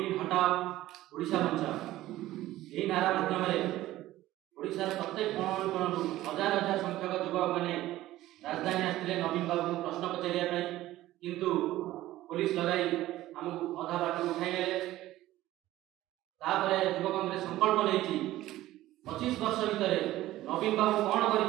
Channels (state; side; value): quieter; left; 15.5 dB